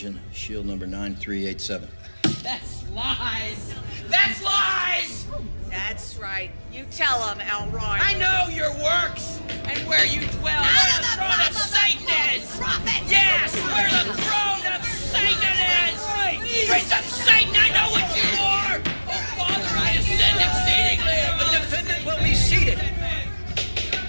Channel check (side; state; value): both; inverted; correlation -1.00